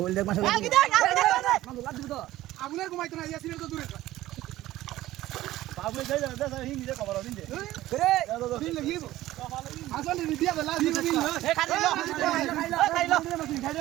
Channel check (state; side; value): quieter; left; 15.6 dB